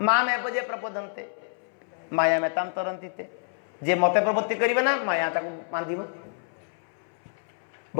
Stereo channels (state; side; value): silent; right; 60 dB below the other